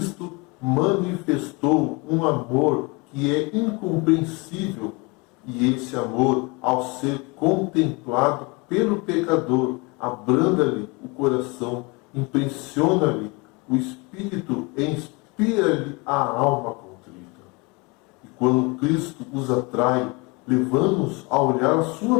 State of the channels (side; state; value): right; quieter; 27.9 dB